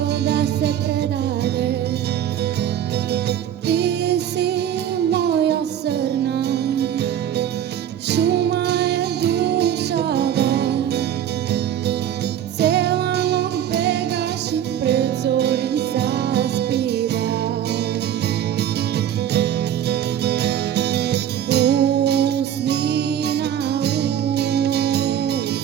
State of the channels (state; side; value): quieter; left; 10.3 dB